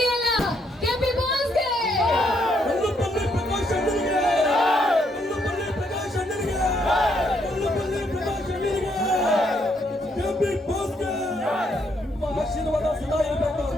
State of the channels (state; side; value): normal; both; correlation 0.73